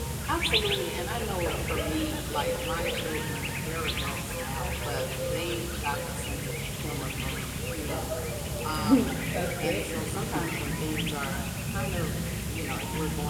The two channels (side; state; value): both; identical; correlation 1.00